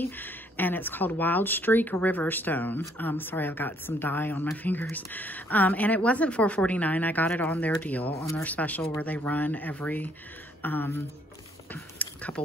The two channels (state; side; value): normal; both; correlation 0.66